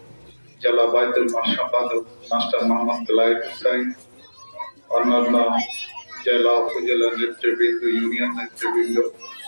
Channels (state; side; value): inverted; both; correlation -1.00